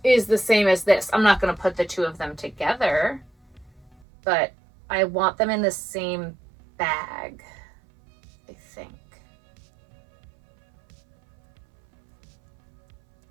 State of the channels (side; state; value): left; drops out; at 4.0 s